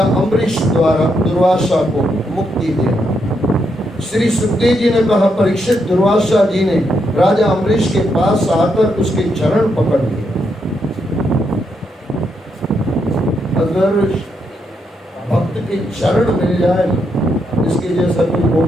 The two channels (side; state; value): both; normal; correlation 0.79